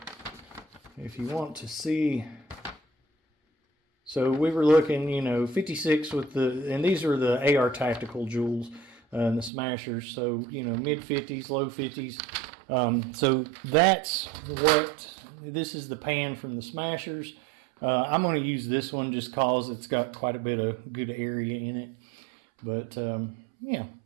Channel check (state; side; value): drops out; left; at 9.5 s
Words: if you want to see... So we were looking, 56 with the, and these are the AR Tactical Joules and the Smashers. So, mid 50s, low 50s. So that's what, this is the pan from the Smashers. I'm going to use this one just cause it's got quite a bit of good area in it. But, yeah.